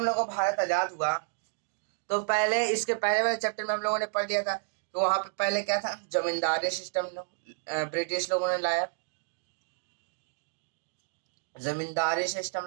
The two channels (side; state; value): left; silent; 58 dB below the other